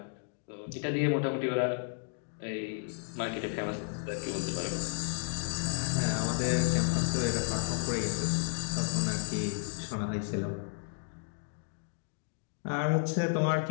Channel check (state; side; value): silent; right; digital silence